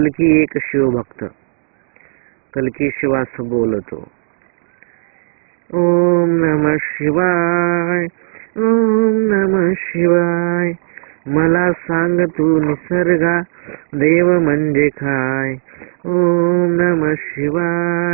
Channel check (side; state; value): left; silent; digital silence